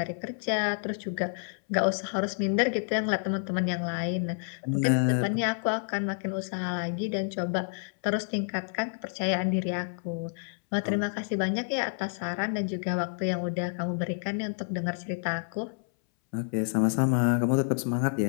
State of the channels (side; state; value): right; silent; 59 dB below the other